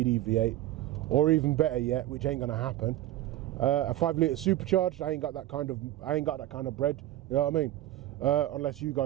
V8, or even better yet, which ain't gonna happen, a 5 litre supercharged. I ain't got that kind of bread. You know what I mean? Unless you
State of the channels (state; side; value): quieter; left; 14.4 dB